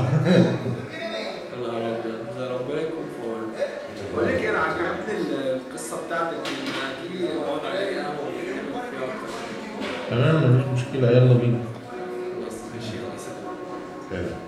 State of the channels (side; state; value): both; identical; correlation 1.00